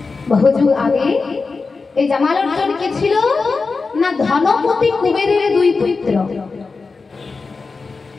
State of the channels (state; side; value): quieter; right; 4.3 dB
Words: বহুযুগ আগে। এই জামাল অর্জুন কে ছিল না? ধনপতি কুবেরের দুই পুত্র।